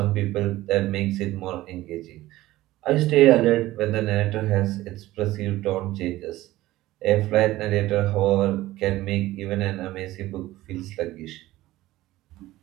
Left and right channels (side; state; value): left; quieter; 16.6 dB